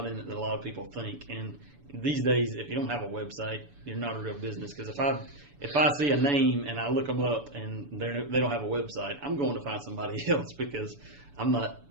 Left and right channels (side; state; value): left; late; 6.9 ms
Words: in it that a lot of people think. And these days, if you don't have a website, you're not a real business. Because if I see a name and I look them up and they don't have a website, I'm going to find somebody else because I'm not.